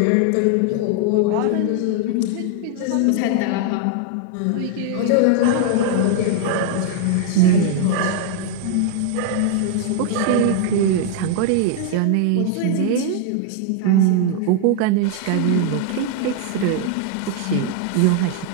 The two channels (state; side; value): different; both; correlation 0.00